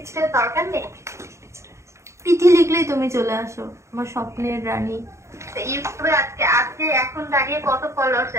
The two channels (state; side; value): late; left; 0.14 ms